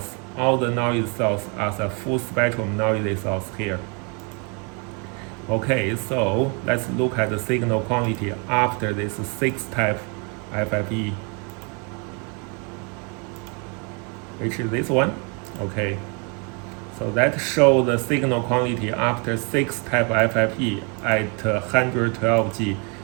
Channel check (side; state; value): left; quieter; 34.6 dB